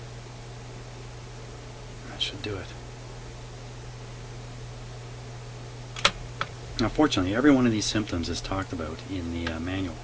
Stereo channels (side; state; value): both; identical; correlation 1.00